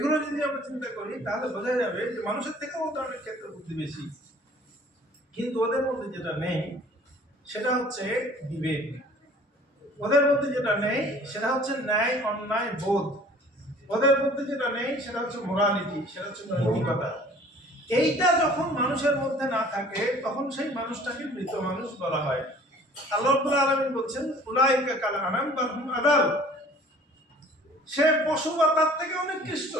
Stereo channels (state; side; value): normal; both; correlation 0.50